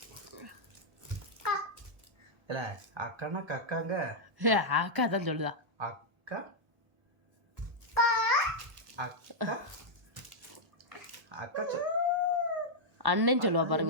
இல்லை அக்கானா கக்காங்க. அக்கா தான் சொல்லுதா. அக்கா அக்கா அக்கா அண்ணன் சொல்லுவா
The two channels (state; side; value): late; left; 1.1 ms